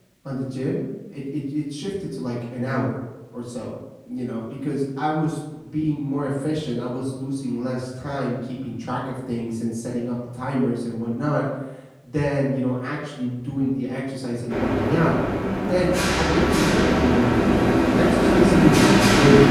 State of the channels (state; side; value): identical; both; correlation 1.00